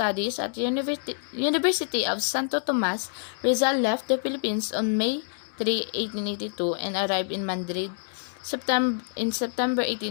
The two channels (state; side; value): silent; right; digital silence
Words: at the University of Santo Tomas, Rizal left the Philippines on May 3, 1882 and arrived in Madrid in September